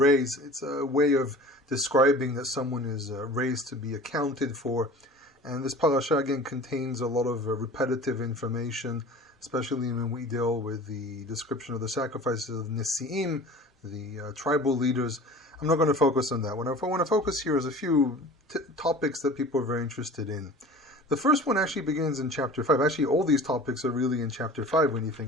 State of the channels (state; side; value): normal; both; correlation 0.41